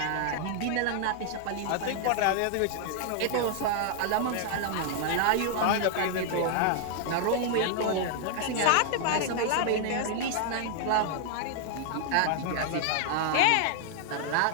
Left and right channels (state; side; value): different; both; correlation 0.00